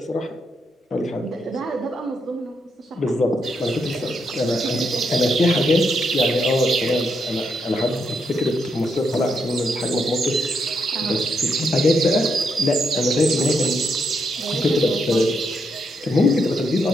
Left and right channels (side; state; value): both; normal; correlation 0.79